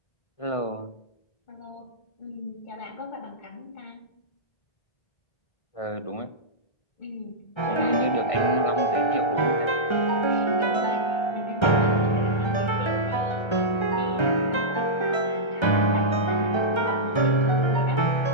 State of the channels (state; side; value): late; right; 1.3 ms